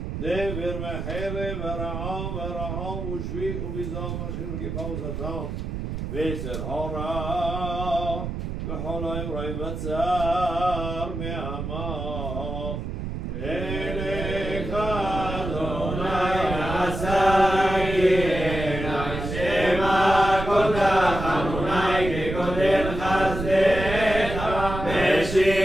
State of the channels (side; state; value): right; noise; rumble, 5 dB below the sound